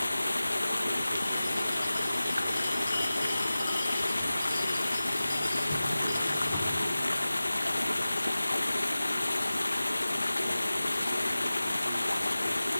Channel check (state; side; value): inverted; both; correlation -0.97